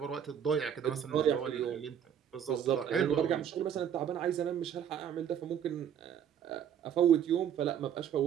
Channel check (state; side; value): quieter; left; 8.9 dB